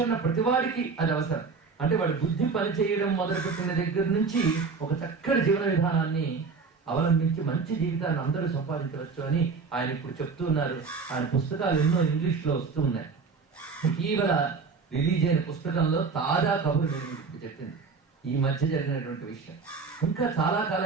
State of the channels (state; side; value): quieter; left; 4.9 dB